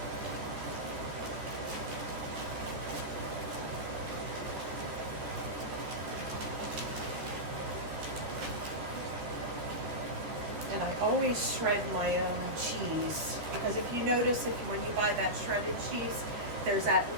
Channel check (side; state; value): left; late; 13 ms